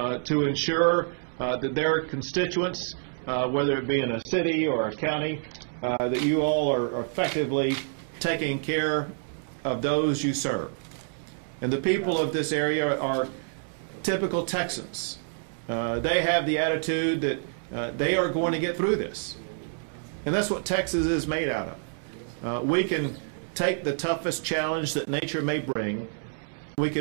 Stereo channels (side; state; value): left; silent; digital silence